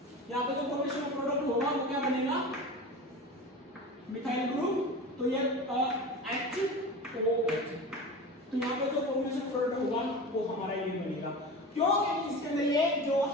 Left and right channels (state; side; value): normal; both; correlation 0.31